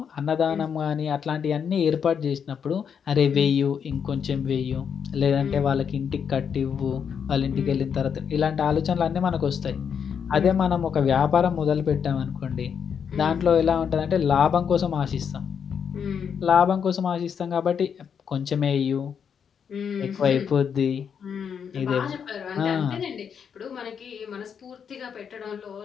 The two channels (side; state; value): right; quieter; 7.3 dB